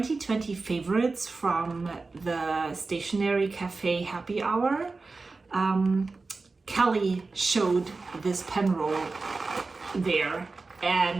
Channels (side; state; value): left; quieter; 3.8 dB